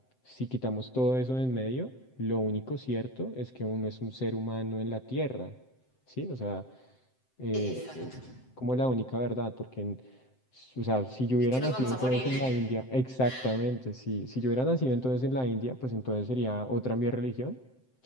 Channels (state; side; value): late; right; 7.8 ms